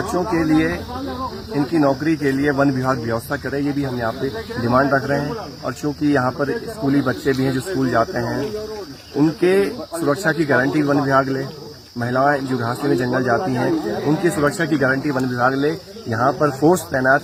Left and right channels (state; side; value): identical; both; correlation 1.00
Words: के लिए, इनकी नौकरी के लिए वन विभाग व्यवस्था करे, ये भी हम यहाँ पे डिमांड रख रहे हैं। और चूंकि यहाँ पर स्कूली बच्चे भी हैं जो स्कूल जाते हैं, उनके सुरक्षा की गारंटी वन विभाग ले, महिलाएं जो घास में जंगल जाती हैं उनकी सुरक्षा की गारंटी वन विभाग ले, यहाँ पर फोर्स तैनात